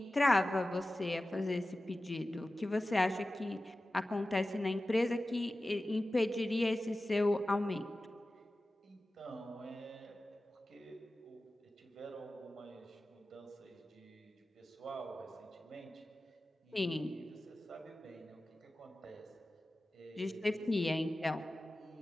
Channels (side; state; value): both; normal; correlation 0.95